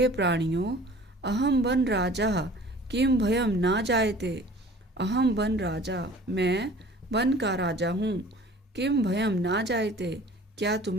प्राणियों अहम वन राजा किम भयम ना जायते अहम वन राजा मैं वन का राजा हूँ किम भयम ना जायते क्या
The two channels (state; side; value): normal; both; correlation 0.47